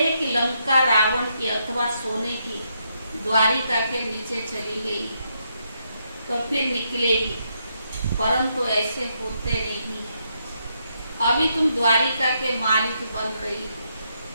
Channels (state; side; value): inverted; both; correlation -0.78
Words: कि लंका रावण की अथवा सोने की द्वारिका के नीचे चली गई तो फिर निकलेगी, परंतु ऐसे होते नहीं है। अभी तुम द्वारिका के मालिक बन रही